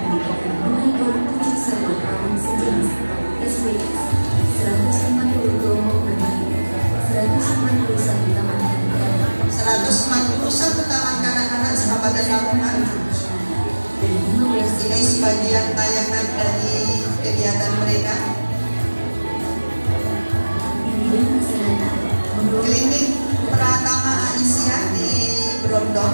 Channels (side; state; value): both; inverted; correlation -1.00